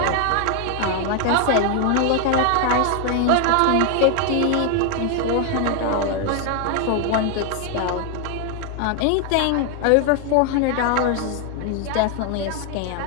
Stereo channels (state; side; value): different; both; correlation 0.00